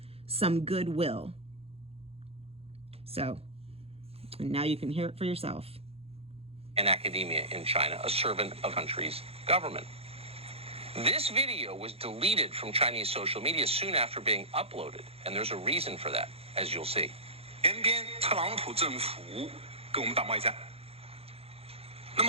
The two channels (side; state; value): left; late; 0.29 ms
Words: some goodwill. So, and now you can hear it for yourself. And academia in China, a servant of the country's government. This video was deleted from Chinese social media soon after being uploaded, and there's a reason for that, as you'll see. 偏偏特朗普政府跟我们打贸易战，那